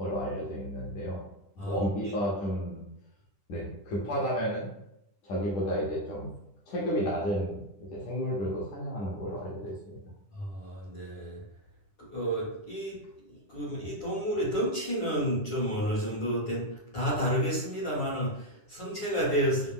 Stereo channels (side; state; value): right; late; 10 ms